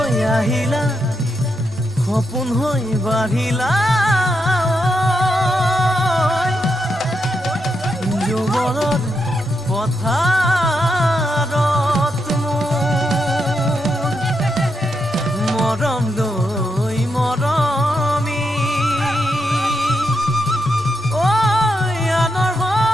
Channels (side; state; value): both; normal; correlation 0.83